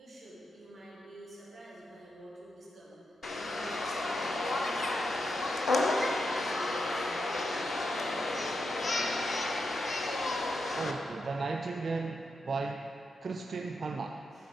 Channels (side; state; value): both; normal; correlation 0.85